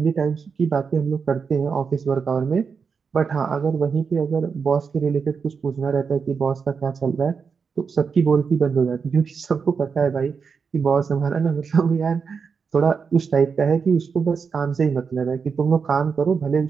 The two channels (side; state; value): left; quieter; 5.7 dB